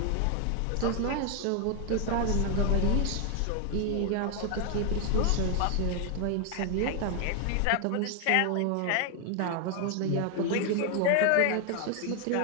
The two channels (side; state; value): both; different; correlation 0.01